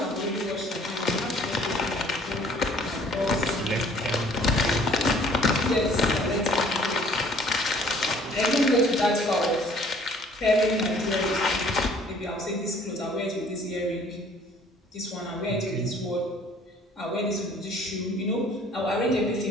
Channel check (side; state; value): both; normal; correlation 0.56